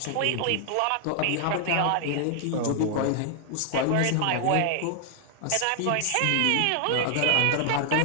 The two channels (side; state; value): both; different; correlation 0.00